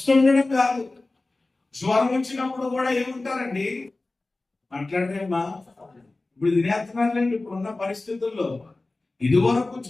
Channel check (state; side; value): quieter; right; 3.2 dB